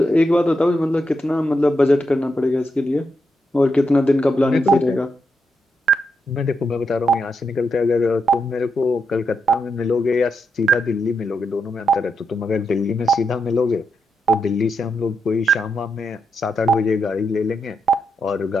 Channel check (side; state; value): both; normal; correlation 0.83